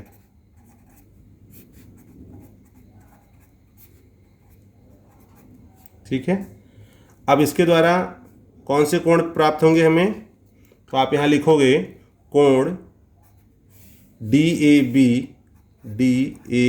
ठीक है, अब इसके द्वारा कौन से कोण प्राप्त होंगे हमें, तो आप यहाँ लिखोगे कोण DAB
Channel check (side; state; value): both; identical; correlation 1.00